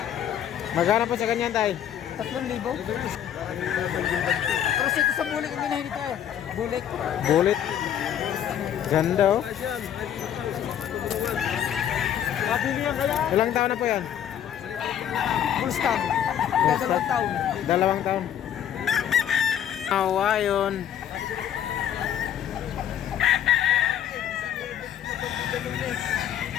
Magkano po sa ganyan tayo? 3,000. Pero ito sa bulik ang ginahin tayo. Bulik. Bulit. Ganda oh. Ilang taon na po yan? Full stop. 2 taon. 2 taon. Awa yun.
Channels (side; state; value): right; quieter; 9.9 dB